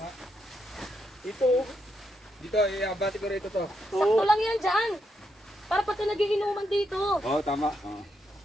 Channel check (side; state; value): both; normal; correlation 0.80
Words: Ito, oh. Dito, iabati ko rito to. Sakto lang yan dyan. Para pagka nagiinuman dito. Oo, tama. Oo.